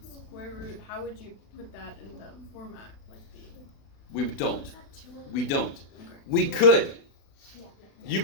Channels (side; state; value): right; late; 36 ms